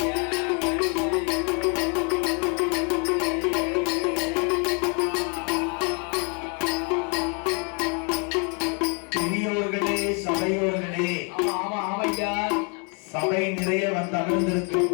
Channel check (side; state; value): right; quieter; 35.9 dB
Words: சபையோர்களே சபை நிறைய வந்து